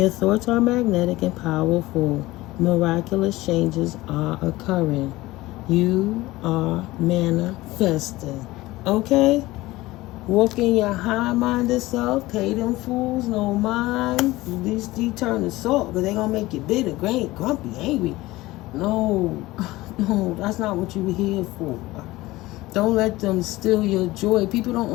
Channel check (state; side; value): quieter; right; 18.8 dB